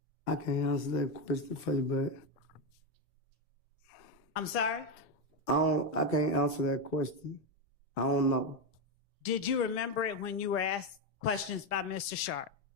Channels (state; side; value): normal; both; correlation 0.09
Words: I can't answer that question for you, but I'm sorry? I can't answer that question. I don't know. Did you remember it when you were asked questions by Mr. Sharp?